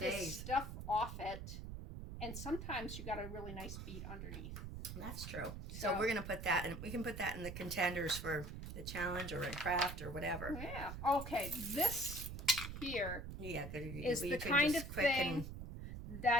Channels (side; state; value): right; noise; rumble, 8 dB below the sound